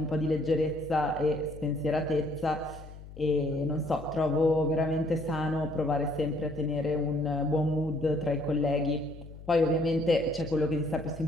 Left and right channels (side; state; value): left; noise; hum, 16 dB below the sound